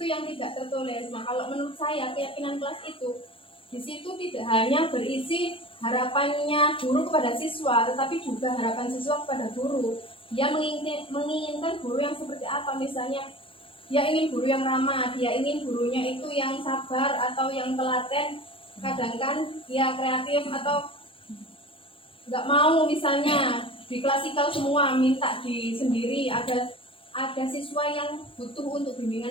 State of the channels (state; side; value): late; right; 0.26 ms